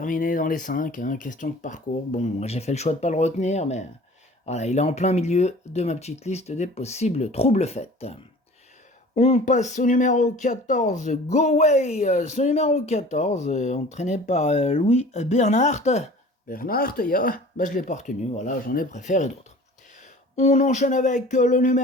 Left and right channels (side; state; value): both; normal; correlation 0.44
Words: dans les 5, hein, question de parcours. Bon, j'ai fait le choix de ne pas le retenir, mais voilà, il est en plein milieu de ma petite liste des possibles troubles faits. On passe au numéro 14, Go Way. Ce numéro 14, entraîné par Louis Bernhardt. Bernhardt, je l'ai pas retenu, voilà, j'en ai préféré d'autres. On enchaîne avec le